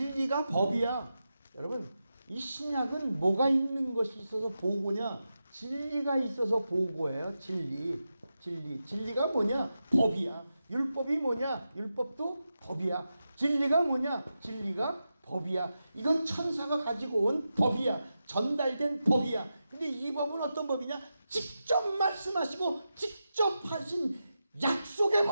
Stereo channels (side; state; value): both; inverted; correlation -0.90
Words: 법이야. 여러분 이 신약은 뭐가 있는 것이 있어서 보고냐? 진리가 있어서 보고예요. 진리가 뭐냐? 법이야. 율법이 뭐냐? 율법도 법이야. 진리가 뭐냐? 진리가 법이야. 이건 천사가 가지고 온 법이야. 전달된 법이야. 근데 이 법은 어떤 법이냐? 직접 말씀하시고 직접 하신 약속의